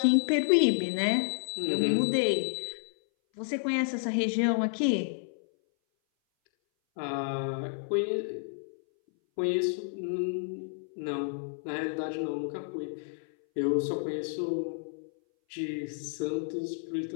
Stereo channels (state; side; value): silent; right; 58 dB below the other